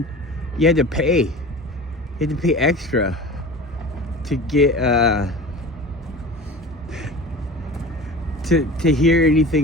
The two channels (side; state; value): both; normal; correlation 0.37